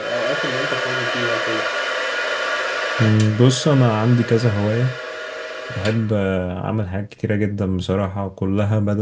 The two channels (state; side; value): identical; both; correlation 1.00